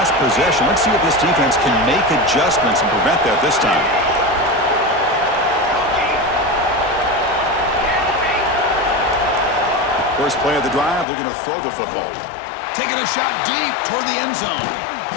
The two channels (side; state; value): right; drops out; at 11.1 s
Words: possession. Let's see if this defense can make adjustments and prevent that this time. First play of the drive, looking to throw the football. Taking a shot deep toward the end zone.